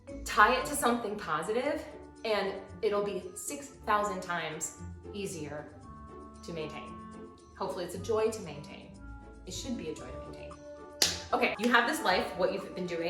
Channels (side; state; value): both; identical; correlation 1.00